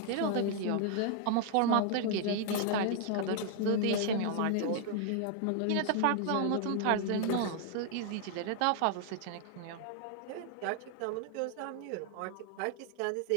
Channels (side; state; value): both; different; correlation 0.00